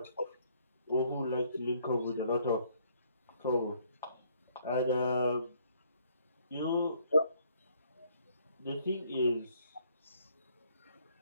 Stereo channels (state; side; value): inverted; both; correlation -0.66